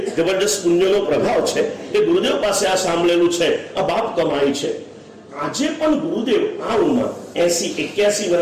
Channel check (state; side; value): identical; both; correlation 1.00